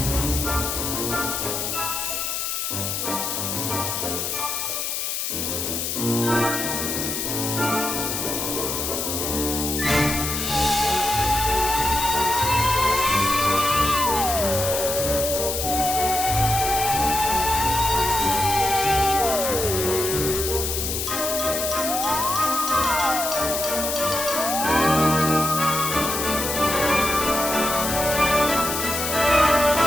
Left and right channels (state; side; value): noise; left; hiss, 2 dB below the sound